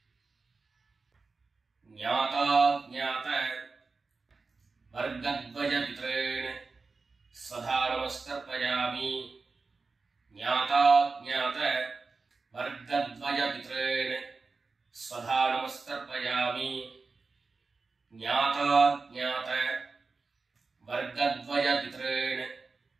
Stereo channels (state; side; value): quieter; left; 4.2 dB